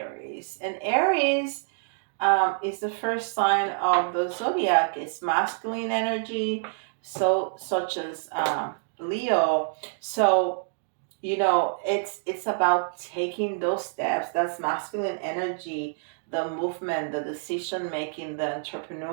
and Aries is the first sign of the zodiac. It's masculine energy, so such as Leo. So it's about taking those steps. That's masculine energy, the movement, the decision making, the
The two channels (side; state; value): left; silent; digital silence